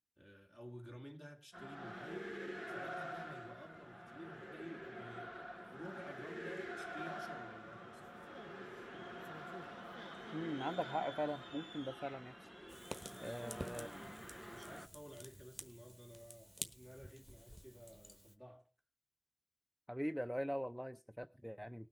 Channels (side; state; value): both; identical; correlation 1.00